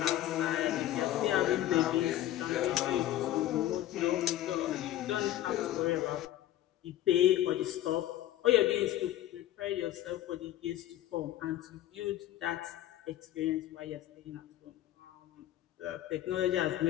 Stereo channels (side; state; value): right; quieter; 13.3 dB